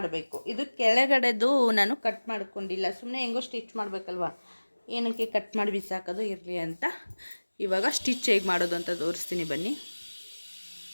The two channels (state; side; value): inverted; both; correlation -1.00